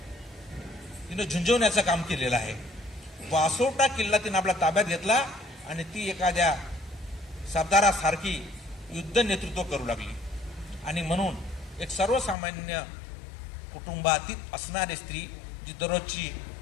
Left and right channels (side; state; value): right; drops out; at 12.4 s